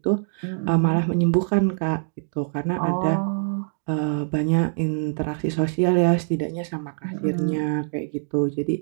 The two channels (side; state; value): left; silent; 63 dB below the other